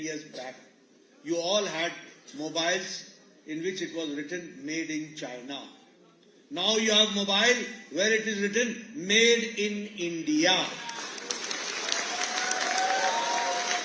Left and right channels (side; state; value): both; identical; correlation 1.00